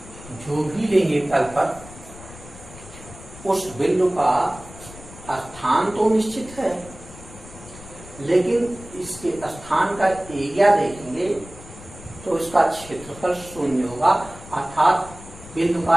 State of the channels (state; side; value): noise; left; rumble, 17 dB below the sound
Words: जो भी लेंगे तल पर, उस बिंदु का स्थान तो निश्चित है, लेकिन इसके स्थान का एरिया देखेंगे तो इसका क्षेत्रफल शून्य होगा, अर्थात बिंदु